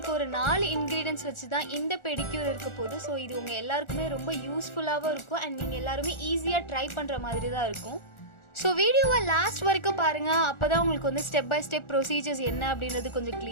ஒரு 4 ingredients வச்சு தான் இந்த பெடிக்யூர் இருக்க போகுது. சோ இது உங்க எல்லாருக்குமே ரொம்ப யூஸ்ஃபுல்லாவும் இருக்கும் and நீங்க எல்லாரும் ஈஸியா ட்ரை பண்ற மாதிரி தான் இருக்கும். ஸோ வீடியோவை லாஸ்ட் வரைக்கும் பாருங்கள், அப்போ தான் உங்களுக்கு வந்து ஸ்டெப் பை ஸ்டெப் ப்ரொசீஜர்ஸ் என்ன அப்படின்றது கொஞ்சம்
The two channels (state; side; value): late; right; 1.4 ms